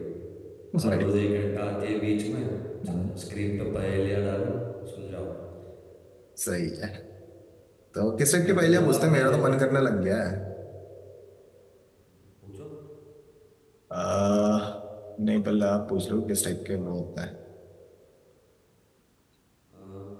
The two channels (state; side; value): identical; both; correlation 1.00